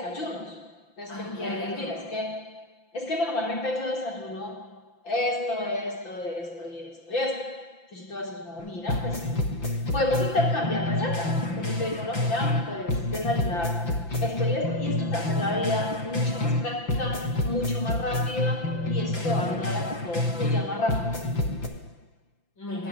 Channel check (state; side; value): late; right; 5.9 ms